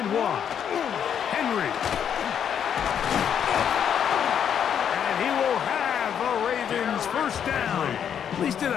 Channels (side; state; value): right; quieter; 8.5 dB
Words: 1. Henry. And he will have a Ravens first down. At least it